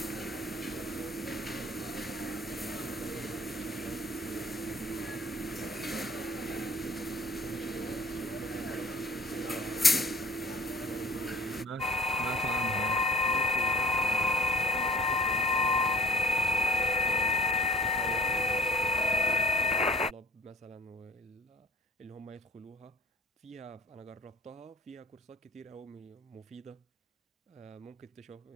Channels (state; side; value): normal; both; correlation 0.53